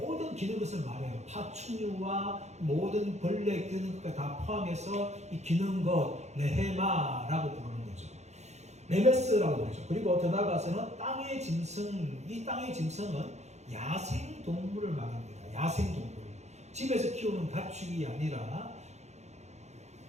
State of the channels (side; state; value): left; late; 0.33 ms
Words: 기는 것을 말해요. 파충류와 모든 벌레 기는 것까지 다 포함해서 이 기는 것, 레헤마라고 부르는 거죠. 레메스라고 부르죠. 그리고 더 나아가서는 땅의 짐승, 이 땅의 짐승은 야생 동물을 말합니다. 야생 동물. 집에서 키우는 가축이 아니라